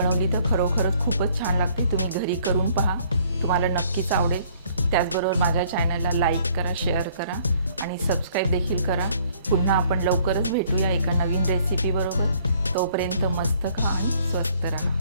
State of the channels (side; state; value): both; inverted; correlation -0.61